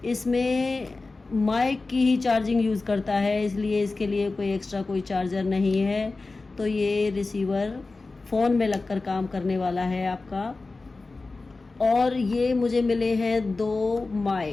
इसमें माइक की ही चार्जिंग यूज़ करता है, इसलिए इसके लिए कोई एक्स्ट्रा कोई चार्जर नहीं है। तो ये रिसीवर फ़ोन में लगकर काम करने वाला है आपका। और ये मुझे मिले हैं 2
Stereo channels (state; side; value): quieter; right; 3.6 dB